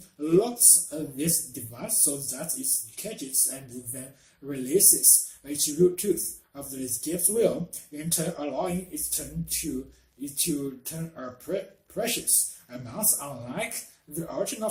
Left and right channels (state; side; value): identical; both; correlation 1.00